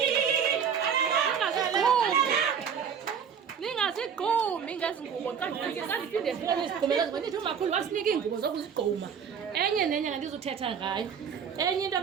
ningasigqumi ngezi ngubo xa ndiphinde zibone izigqumela ndithi umakhulu wasinika iingubo zokuzigquma enye nenye ngandizuthetha ngayo enye into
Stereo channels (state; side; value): quieter; left; 7.2 dB